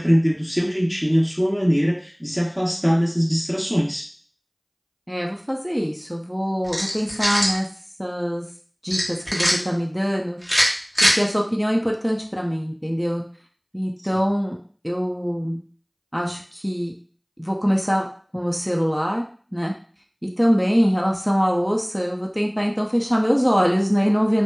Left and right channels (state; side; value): identical; both; correlation 1.00